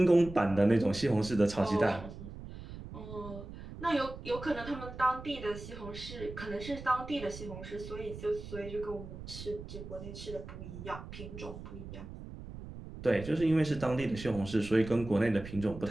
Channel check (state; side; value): noise; right; rumble, 12 dB below the sound